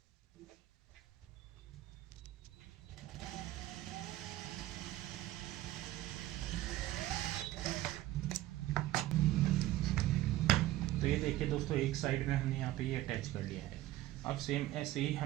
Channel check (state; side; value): quieter; left; 15.5 dB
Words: तो ये देखिए दोस्तों, एक साइड में हमने यहाँ पे ये अटैच कर लिया है। अब सेम ऐसे ही